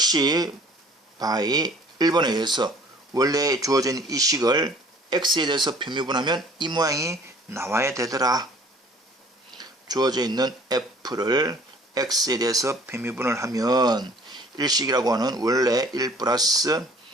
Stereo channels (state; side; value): normal; both; correlation 0.53